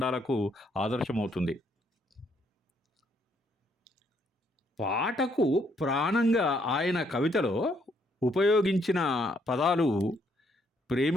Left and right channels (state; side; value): normal; both; correlation 0.71